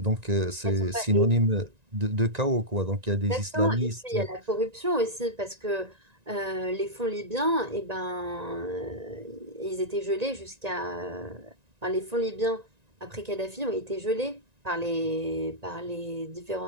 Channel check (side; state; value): left; late; 1.9 ms